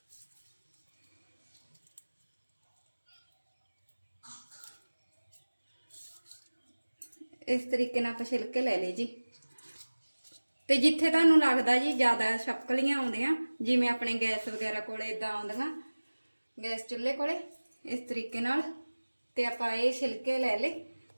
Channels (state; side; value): inverted; both; correlation -1.00